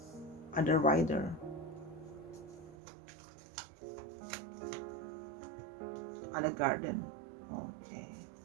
Ada rider. Ada garden. Oke.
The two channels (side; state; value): left; drops out; at 2.8 s